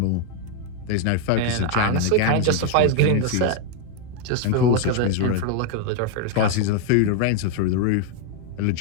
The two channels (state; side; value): different; both; correlation 0.01